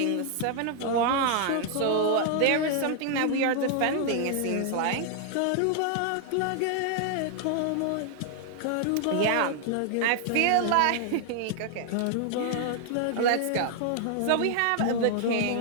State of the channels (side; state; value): both; different; correlation 0.00